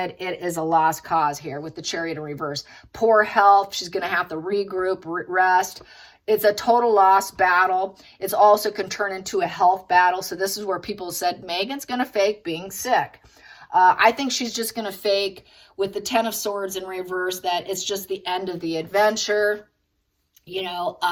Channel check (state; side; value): identical; both; correlation 1.00